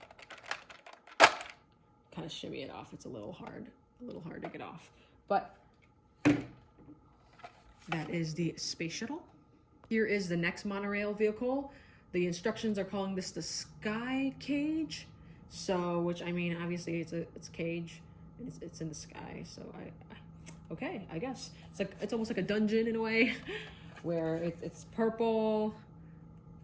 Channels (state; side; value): identical; both; correlation 1.00